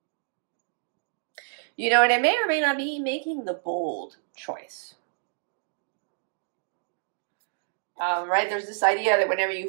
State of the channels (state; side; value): silent; left; digital silence